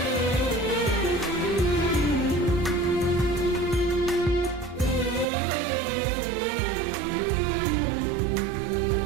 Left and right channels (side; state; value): left; drops out; at 5.2 s